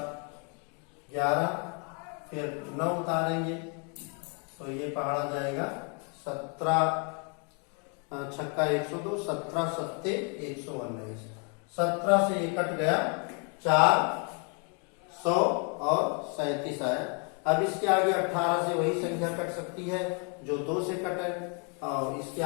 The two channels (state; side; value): quieter; right; 37.4 dB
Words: 11, फिर 9 उतारेंगे तो ये पहाड़ा जाएगा 17 छक्का 102, 17 सत्ते 119। 17 से ये कट गया, 400 और 37 आया। अब इसके आगे 18 से वही संख्या कट सकती है जो 2 से कटे, और इसके